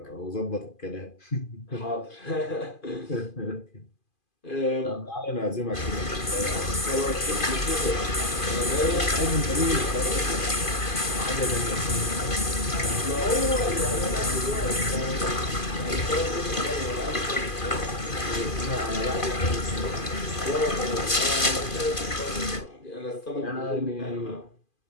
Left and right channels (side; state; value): right; late; 2.5 ms